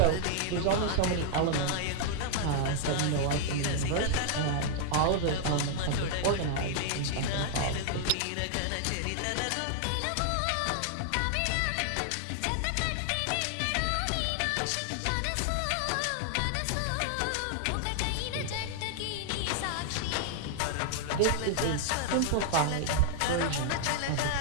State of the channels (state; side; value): different; both; correlation -0.01